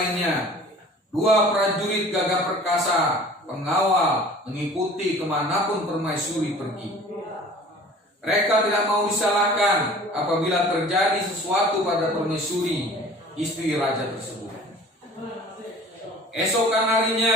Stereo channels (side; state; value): both; normal; correlation 0.46